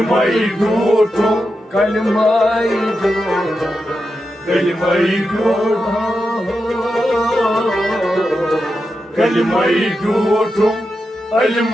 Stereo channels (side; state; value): both; normal; correlation 0.88